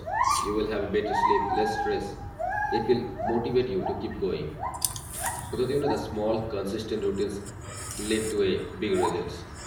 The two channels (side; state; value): both; identical; correlation 1.00